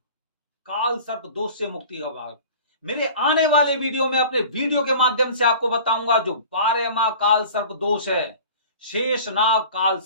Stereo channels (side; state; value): both; inverted; correlation -0.42